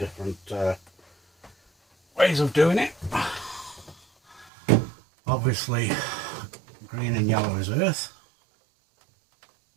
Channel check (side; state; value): left; drops out; at 4.5 s